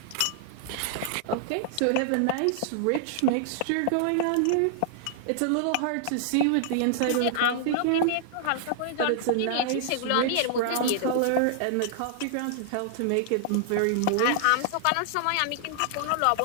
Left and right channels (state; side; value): different; both; correlation -0.01